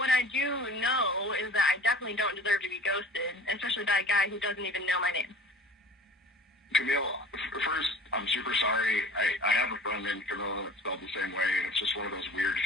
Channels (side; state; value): both; normal; correlation 0.44